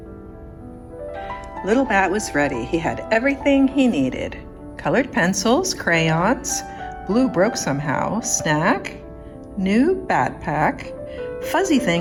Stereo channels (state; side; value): identical; both; correlation 1.00